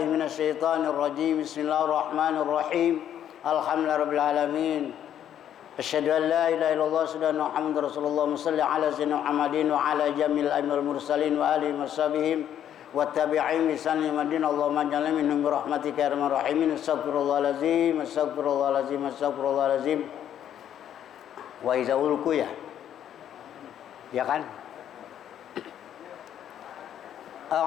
من الشيطان الرجيم بسم الله الرحمن الرحيم Alhamdulillah Rabbil Alamin. Asyhadu an la ilaha illallah wa Muhammadar Rasulullah salli ala sayyidina Muhammadin wa ala jamil aimil mursalin wa alihi washabihim wa tabi'in bi sanni madin Allahumma ja'alna minhum bi rahmatika ya arhamar rahimin. Astaghfirullahalazim astaghfirullahalazim astaghfirullahalazim. Wa iza ulku ya kan?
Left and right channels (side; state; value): right; quieter; 10.2 dB